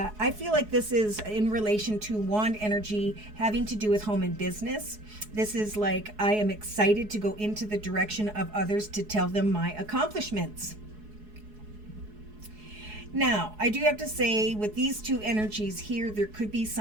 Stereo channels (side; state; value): left; late; 4.7 ms